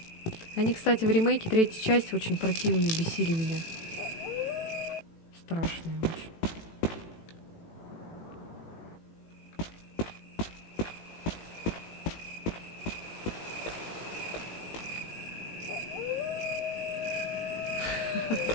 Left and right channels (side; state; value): right; late; 18 ms